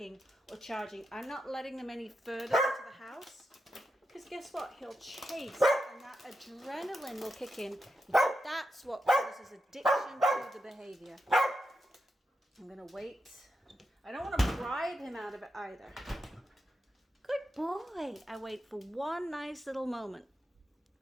or charging. I'm not letting them any further into the house, because guess what? He'll chase, and that adrenaline will kick in. That's what causes addiction to the behavior. I'm going to wait. I don't want to bribe him out of it either. Good boy. I wait for one nice little moment.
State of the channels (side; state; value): both; normal; correlation 0.87